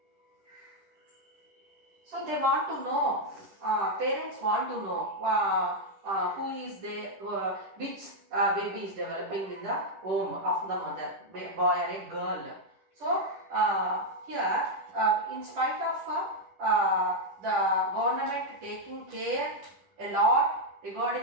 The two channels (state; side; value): late; left; 10 ms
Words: So they want to know, parents want to know who is there, which baby is developing in the womb of the mother, boy or a girl. So here, in spite of the government taking care a lot